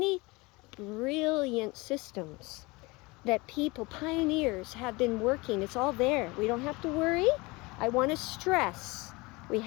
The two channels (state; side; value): quieter; right; 24.1 dB